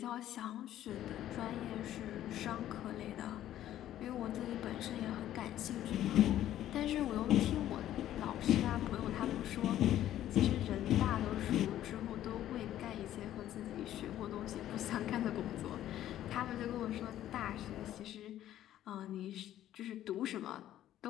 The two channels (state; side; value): quieter; right; 12.5 dB